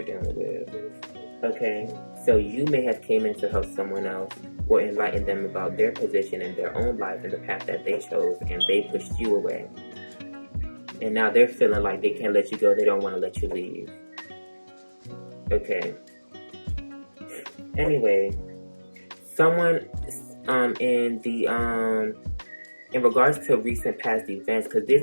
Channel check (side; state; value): both; inverted; correlation -1.00